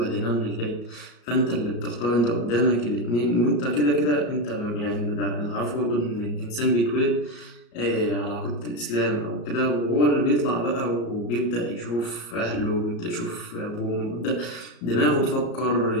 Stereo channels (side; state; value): right; late; 34 ms